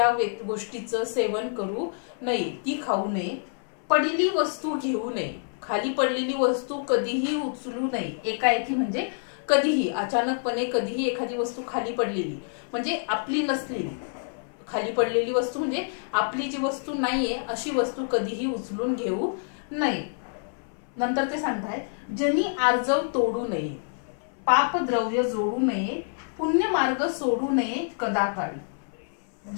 गोष्टीचं सेवन करू नये, ती खाऊ नये। पडलेली वस्तू घेऊ नये, खाली पडलेली वस्तू कधीही उचलू नये. एकाएकी म्हणजे कधीही, अचानकपणे कधीही एखादी वस्तू खाली पडलेली म्हणजे आपली नसलेली, खाली पडलेली वस्तू म्हणजे आपली जी वस्तू नाहीये अशी वस्तू कधीही उचलून घेऊ नये. नंतर ते सांगताय, जनी आर्जव तोडू नये, पाप द्रव्य जोडू नये, पुण्य मार्ग सोडू नये कदाकाळी.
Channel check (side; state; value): right; silent; 59 dB below the other